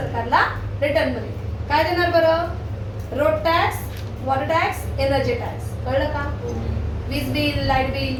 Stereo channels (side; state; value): both; identical; correlation 1.00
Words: रिटर्न मध्ये. काय देणार बरं? Road tax, water tax, energy tax. कळलं का? वीज बिल, लाईट